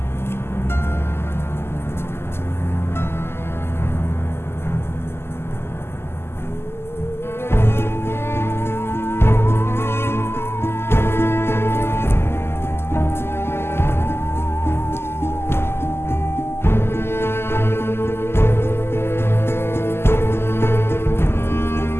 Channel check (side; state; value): right; late; 0.12 ms